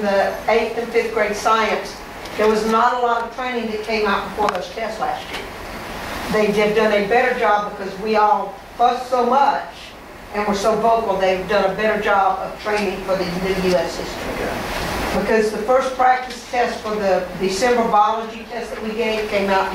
8th and 5th grade science, there was not a lot of training that came out before those tests last year. They've done a better job because we all fuss so much and we're so vocal. They've done a better job of training for the new U.S. history. Okay. Because the first practice test for the December biology test that we gave came out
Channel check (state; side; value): identical; both; correlation 1.00